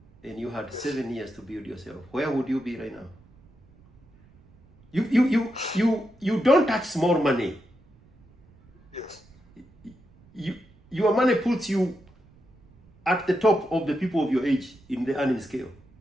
and you had 7 years to build yourself. Where would you be right now? You don't touch small money. Yes. Your money puts you at the top of the people of your age in the earning scale.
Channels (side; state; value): right; noise; rumble, 28 dB below the sound